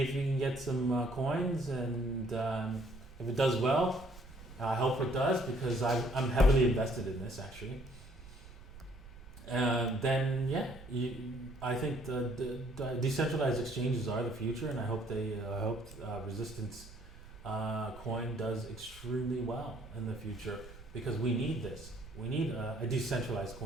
you can get some coins, and if it does well, I hope it does, because I'm heavily invested in this actually. Then yeah, I think the decentralized exchanges are the future, and I hope Resistance coin does extremely well in the future, because we need this. We need a decentralized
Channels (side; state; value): right; noise; rumble, 17 dB below the sound